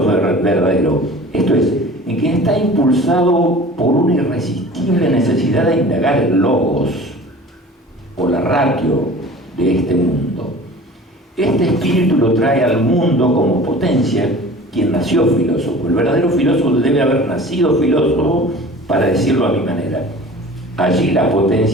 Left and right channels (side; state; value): both; normal; correlation 0.42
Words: verdadero, esto es, en quien está impulsado por una irresistible necesidad de indagar el logos o la ratio de este mundo. Este espíritu lo trae al mundo como potencia quien nació filósofo. El verdadero filósofo debe haber nacido filósofo, para decirlo a mi manera. Allí la